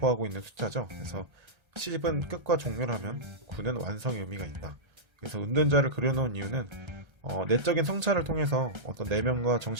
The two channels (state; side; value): late; left; 1.3 ms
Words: 있는 숫자죠. 그래서 10은 끝과 종료라면 9는 완성의 의미가 있다. 그래서 은둔자를 그려놓은 이유는 내적인 성찰을 통해서 어떤 내면과